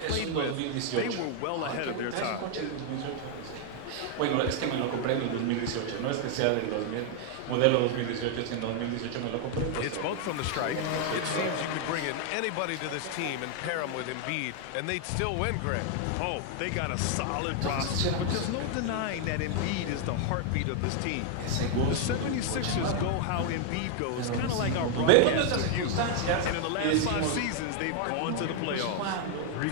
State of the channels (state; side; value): different; both; correlation 0.00